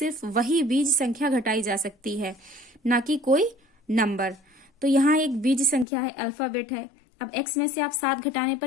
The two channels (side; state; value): right; drops out; at 5.9 s